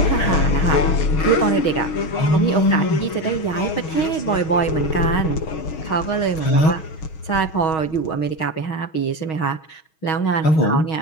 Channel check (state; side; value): late; right; 6.3 ms